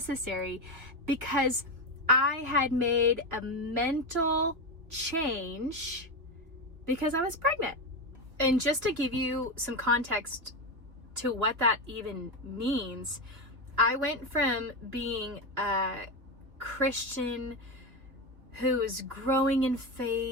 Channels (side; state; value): left; late; 2.8 ms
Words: because I had made a mental change because I was pregnant. And just to give you some context to what that even means, I went from being a Christian who was growing in